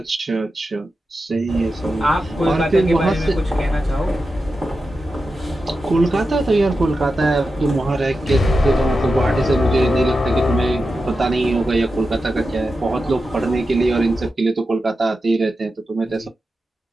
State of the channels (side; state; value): both; normal; correlation 0.91